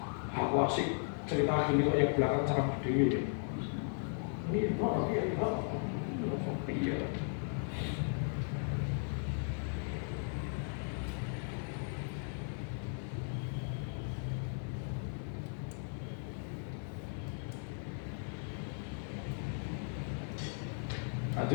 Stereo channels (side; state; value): right; silent; 53 dB below the other